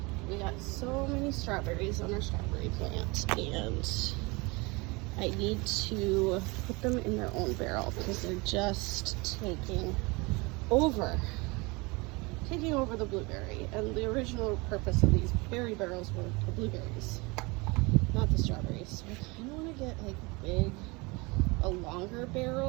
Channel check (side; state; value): left; quieter; 26.2 dB